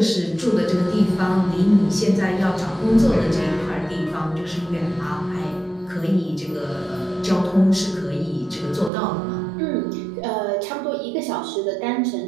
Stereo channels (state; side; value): drops out; left; at 8.9 s